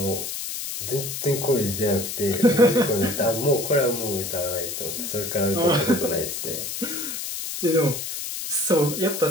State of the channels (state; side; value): noise; left; hiss, 5 dB below the sound